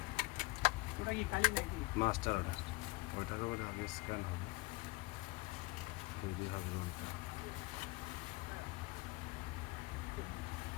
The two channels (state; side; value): quieter; right; 22.4 dB